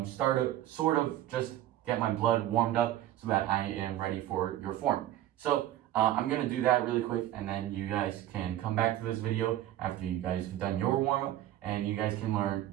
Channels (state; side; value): quieter; left; 13.3 dB